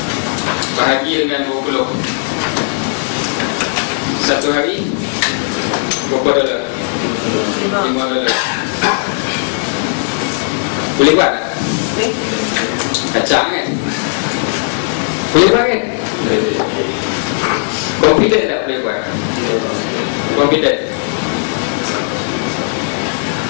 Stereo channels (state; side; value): silent; right; digital silence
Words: bahagi dengan 20. Satu hari berapa dolar? $5. Boleh buat tak? Kacang kan? Boleh buat kan? Confident tak boleh buat? Confident.